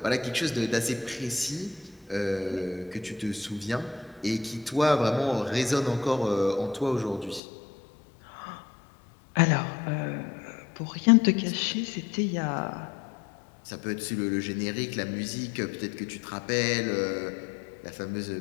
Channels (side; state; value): right; drops out; at 7.4 s